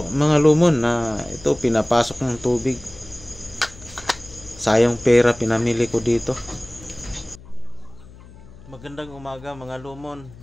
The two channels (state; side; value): noise; left; hum, 20 dB below the sound